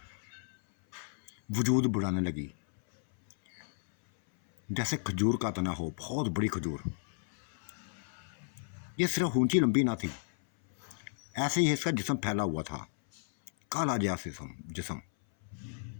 वजूद बढ़ाने लगी, जैसे खजूर का तना हो, बहुत बड़ी खजूर। ये सिर्फ ऊंची लंबी ना थी, ऐसे ही इसका जिस्म फैला हुआ था, काला जैसा जिस्म।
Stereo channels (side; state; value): right; silent; 56 dB below the other